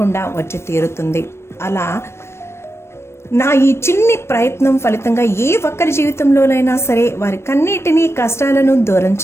వచ్చి తీరుతుంది. అలా నా ఈ చిన్ని ప్రయత్నం ఫలితంగా ఏ ఒక్కరి జీవితంలోనైనా సరే వారి కన్నిటినీ కష్టాలను దూరం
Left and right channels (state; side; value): late; right; 0.13 ms